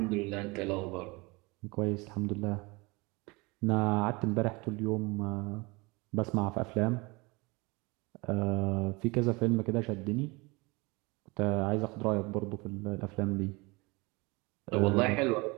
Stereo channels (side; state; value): left; quieter; 25.8 dB